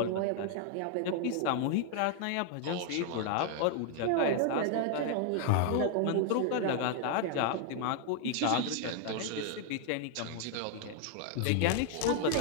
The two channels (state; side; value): different; both; correlation 0.00